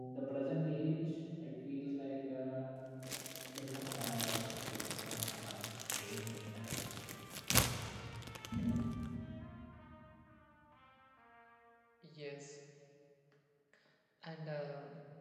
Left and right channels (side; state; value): both; identical; correlation 1.00